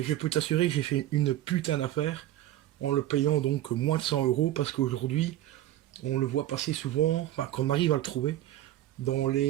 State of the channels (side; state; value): left; quieter; 13.6 dB